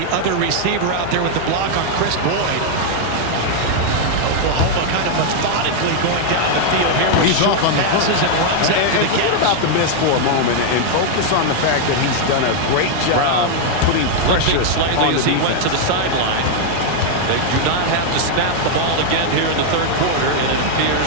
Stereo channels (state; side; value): different; both; correlation 0.00